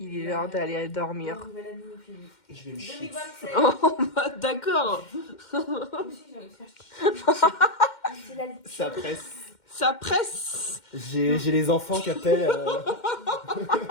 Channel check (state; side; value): late; right; 2.1 ms